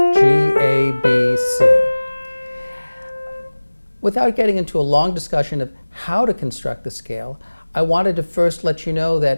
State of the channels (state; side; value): inverted; both; correlation -1.00